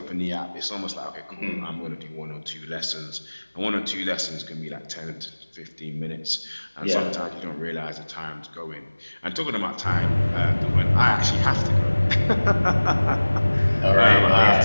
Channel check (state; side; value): inverted; both; correlation -1.00